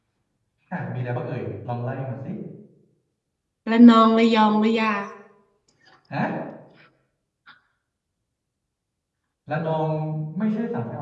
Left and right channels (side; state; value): both; identical; correlation 1.00